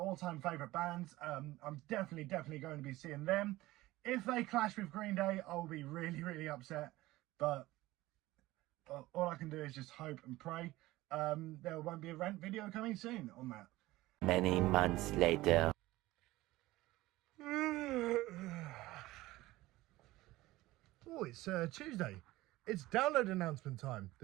favourite bands. I'm definitely going to be seeing them. If they clash with Green Day, I'll be really upset. But all I can do is just hope and pray. There won't be a rant video coming soon on that. Many months later. Oh, it's Tuesday. It's download announcement time.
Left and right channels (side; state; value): left; quieter; 18.1 dB